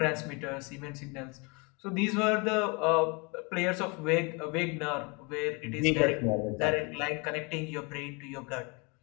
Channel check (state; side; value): quieter; right; 29.9 dB